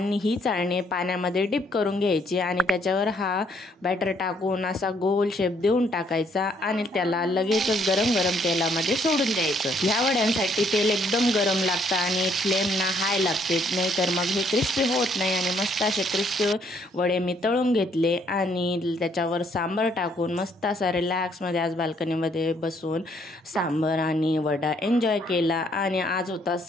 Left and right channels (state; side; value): normal; both; correlation 0.68